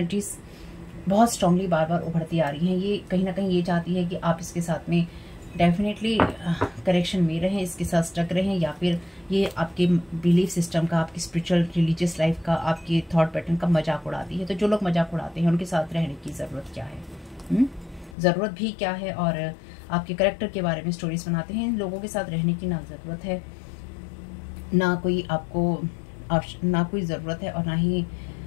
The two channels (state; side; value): drops out; right; at 18.2 s